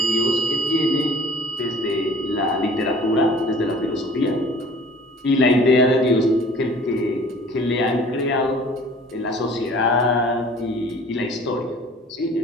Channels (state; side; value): normal; both; correlation 0.48